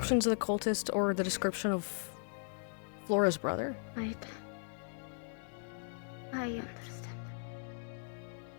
of the cultist or the description of Flora's brother? Right. I understand.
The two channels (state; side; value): silent; right; 53 dB below the other